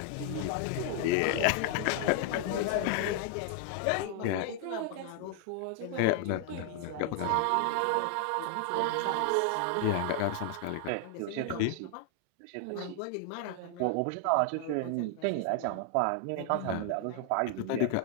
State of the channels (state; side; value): different; both; correlation 0.00